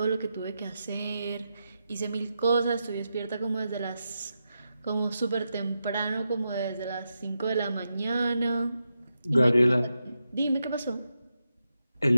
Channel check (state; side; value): inverted; both; correlation -0.87